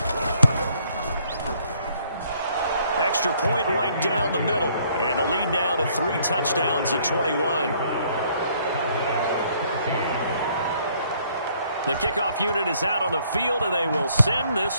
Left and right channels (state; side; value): inverted; both; correlation -0.64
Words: Extra point right down the middle. And the lead now to 3 touchdowns at 21. The kickoff unit is out on the field, and they will send